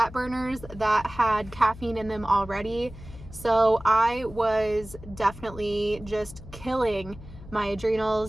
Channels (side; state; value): left; noise; hum, 16 dB below the sound